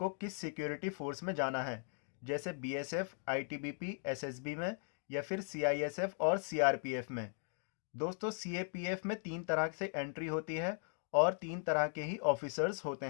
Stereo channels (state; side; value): silent; right; 52 dB below the other